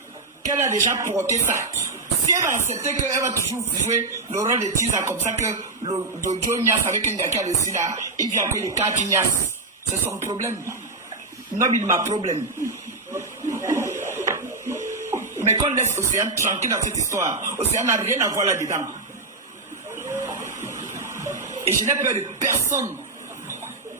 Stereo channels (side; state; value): left; quieter; 3.5 dB